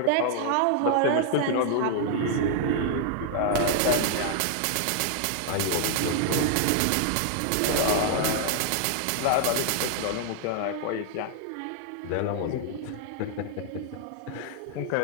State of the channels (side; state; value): both; different; correlation 0.00